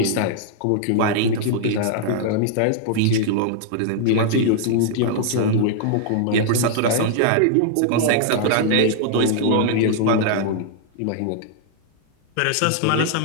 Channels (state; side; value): different; both; correlation -0.01